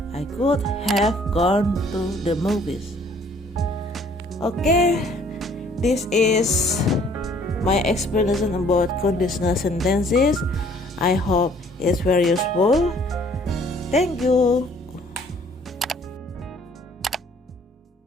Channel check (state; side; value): normal; both; correlation 0.58